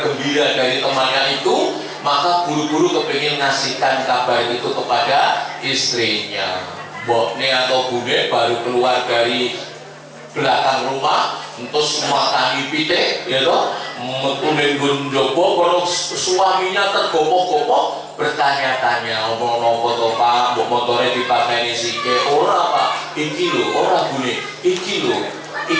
dari temannya itu, maka buru-buru kepingin ngasihkan kabar itu kepada istrinya. Mboknya atau bune baru keluar dari belakang rumah, entus makangi pitik, ya toh, metunin gunjobo, kalau suaminya tergopoh-gopoh, bertanya-tanya, omong nopo toh pak, motornya dipakai sike, ora pak, iki lo, ora bune, iki lo,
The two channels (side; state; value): both; identical; correlation 1.00